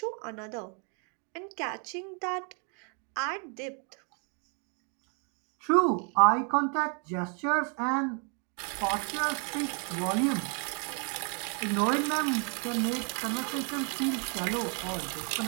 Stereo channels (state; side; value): quieter; left; 38.4 dB